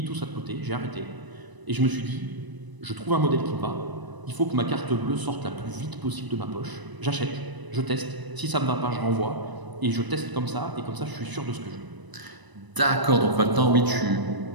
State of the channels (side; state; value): left; late; 1.0 ms